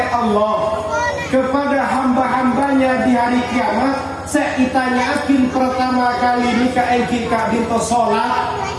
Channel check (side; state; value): both; identical; correlation 1.00